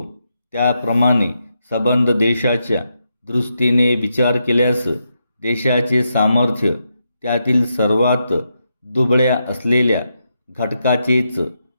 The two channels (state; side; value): inverted; both; correlation -0.83